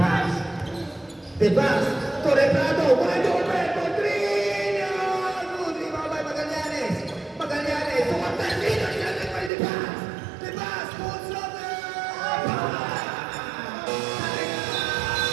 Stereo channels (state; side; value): drops out; left; at 9.5 s